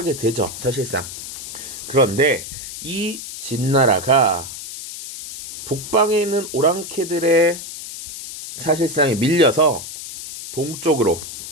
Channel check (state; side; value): noise; left; hiss, 10 dB below the sound